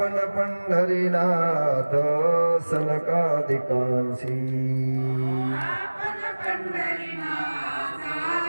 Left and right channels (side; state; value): both; inverted; correlation -1.00